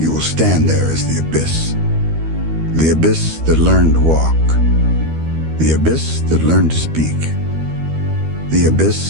will stand there as the abyss. The abyss that learned to walk. The abyss that learned to speak. The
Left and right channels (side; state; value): left; late; 13 ms